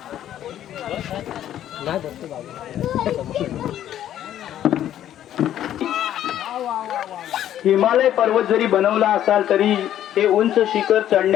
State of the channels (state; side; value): quieter; right; 11.4 dB